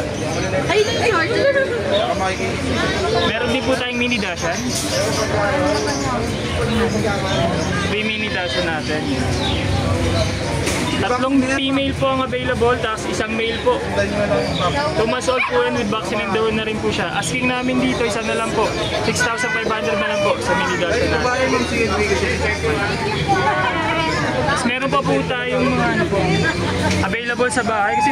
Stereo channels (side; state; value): both; identical; correlation 1.00